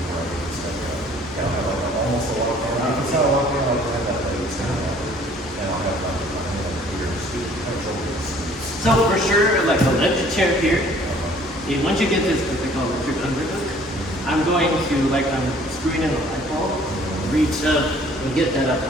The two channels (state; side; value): normal; both; correlation 0.56